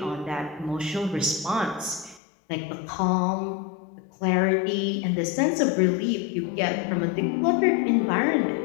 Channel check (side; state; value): right; drops out; at 2.2 s